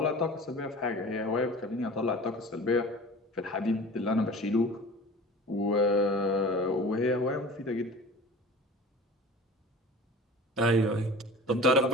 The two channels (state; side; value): normal; both; correlation 0.38